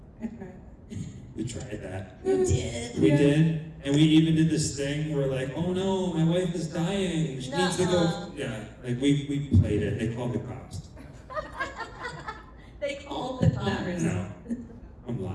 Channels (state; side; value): identical; both; correlation 1.00